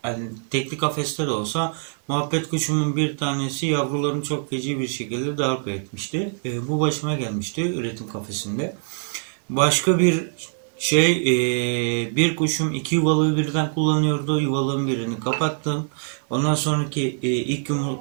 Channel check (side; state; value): left; silent; digital silence